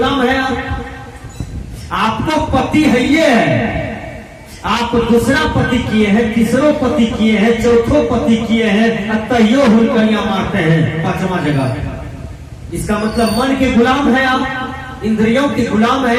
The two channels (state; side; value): identical; both; correlation 1.00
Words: है आप। आपको पति है ये है, आप दूसरा पति किए हैं, तीसरो पति किए हैं, चौथो पति किए हैं, तैयो हुलकनिया मारते हैं 5वां जगह। इसका मतलब मन के गुलाम है आप, इंद्रियों के गुलाम